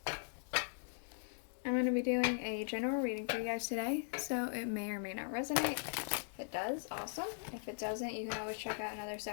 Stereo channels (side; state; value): right; silent; digital silence